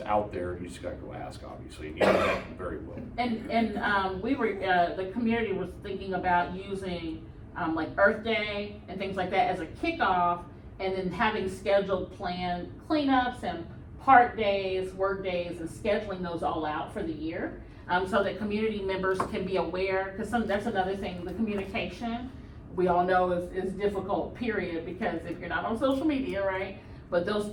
out there, you just gotta go ask, obviously, and you know that very well. And we were, the community was thinking about using, like Earth Day and things like that as a kickoff, and then having scheduled planned cleanups and park days, work days, and scheduling those all out for the year, so that community members can be aware, because that's another thing, the communication, we all know is difficult, period, because if you're not on social media, right? But those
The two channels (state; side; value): identical; both; correlation 1.00